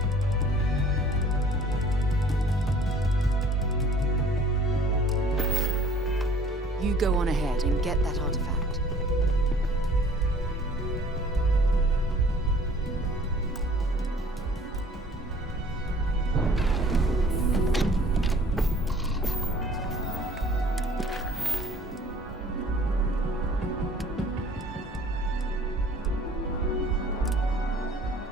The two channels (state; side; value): normal; both; correlation 0.52